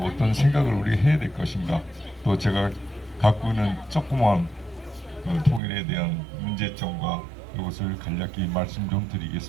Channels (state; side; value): drops out; left; at 5.6 s